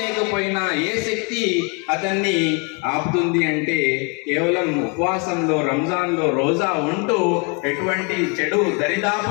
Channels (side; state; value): right; quieter; 33.1 dB